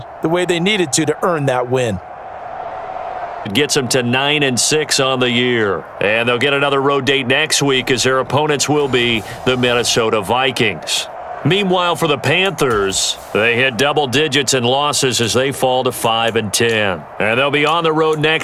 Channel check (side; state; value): both; identical; correlation 1.00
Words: the way they needed to earn that win. It gets them to 9-6 on the year. And they'll get another road date next week as their opponents will be the Minnesota Vikings. Meanwhile, for the Panthers, they hit double digits in losses as they fall to 5-10. And they'll be on the road